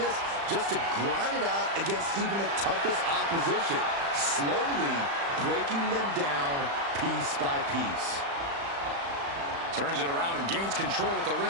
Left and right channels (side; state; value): left; late; 35 ms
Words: just to grind it out against even the toughest opposition, slowly breaking them down piece by piece. Turns it around and gains control with the